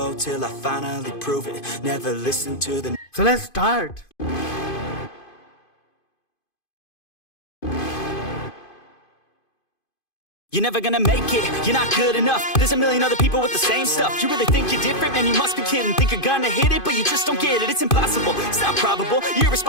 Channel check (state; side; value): late; right; 2.5 ms